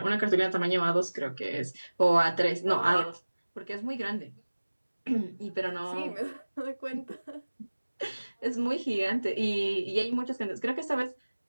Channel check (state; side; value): inverted; both; correlation -1.00